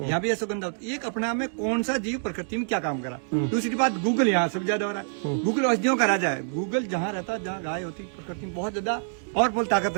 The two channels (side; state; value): left; silent; digital silence